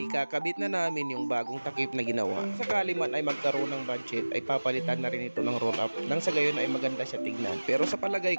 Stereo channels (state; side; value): inverted; both; correlation -1.00